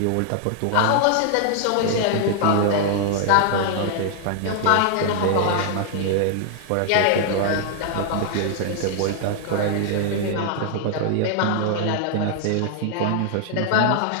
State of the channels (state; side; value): different; both; correlation 0.00